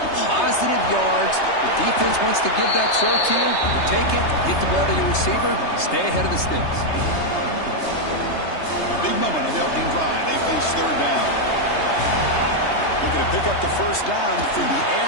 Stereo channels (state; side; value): late; right; 3.3 ms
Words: positive yards. The defense wants to give that throw to you. You take it, get the ball to your receiver, stay ahead of the sticks. Big moment on the opening drive. They face 3rd down. Looking to pick up the 1st down through the